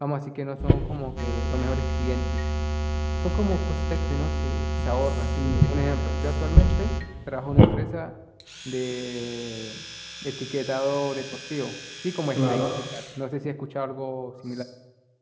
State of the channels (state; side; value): identical; both; correlation 1.00